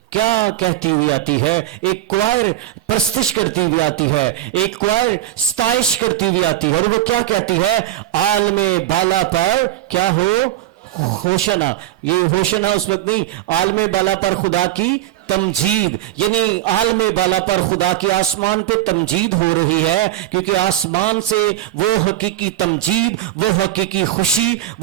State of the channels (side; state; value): left; quieter; 13.1 dB